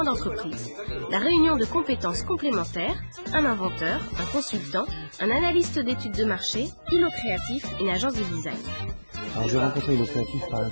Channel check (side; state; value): both; inverted; correlation -1.00